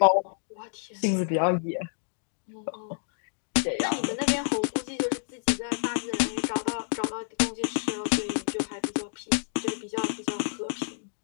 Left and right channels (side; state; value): right; silent; digital silence